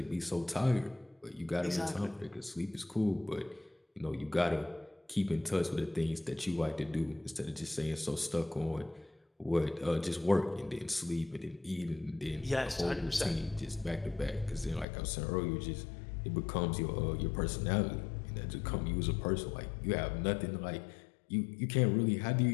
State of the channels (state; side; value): drops out; right; at 14.9 s